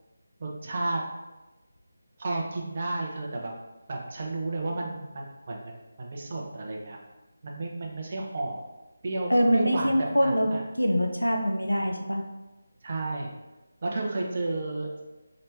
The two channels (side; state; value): both; inverted; correlation -0.94